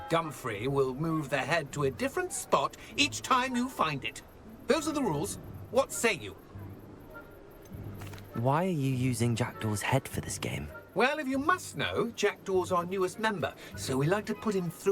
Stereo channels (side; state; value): both; identical; correlation 1.00